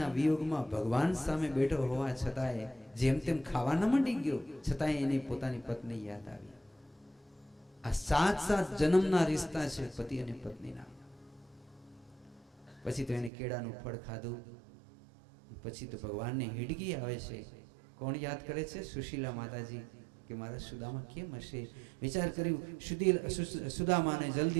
વિયોગમાં ભગવાન સામે બેઠો હોવા છતાંય જેમ તેમ ખાવા ન માંડી ગયો, છતાંય એને પોતાની પત્ની યાદ આવી. આ 7 જન્મના રિશ્તા છે પતિ અને પત્નીના. પછી તો એને કેળાનું ફળ ખાધું. પછી તો ભગવાનને હિડકી આવે છે. કોણ યાદ કરે છે? સુશીલા માતાજી. કે મારા સુદામા કેમ હશે? વિચાર કર્યું, સુદામાને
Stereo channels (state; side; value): drops out; left; at 13.3 s